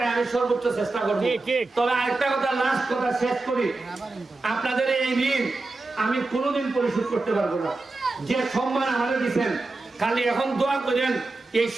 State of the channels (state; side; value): quieter; left; 3.3 dB